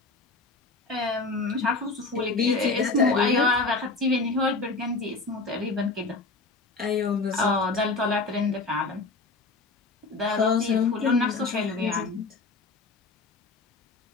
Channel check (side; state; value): right; quieter; 3.7 dB